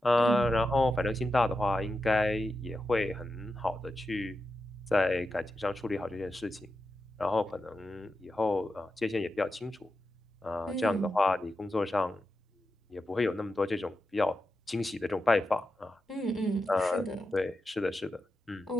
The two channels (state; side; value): normal; both; correlation 0.89